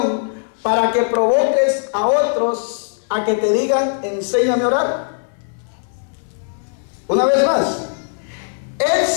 para que provoques a otros a que te digan: enséñame a orar? Una vez más,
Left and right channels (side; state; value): right; silent; 66 dB below the other